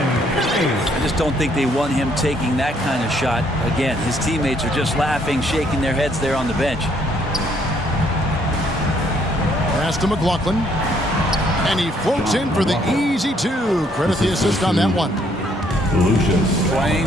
just don't think they want him taking that kind of shot. Again, his teammates are just laughing, shaking their heads there on the bench. Pass to McLaughlin. And he floats in for the easy 2. Credit the assist on that one. Lucius.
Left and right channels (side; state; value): both; normal; correlation 0.67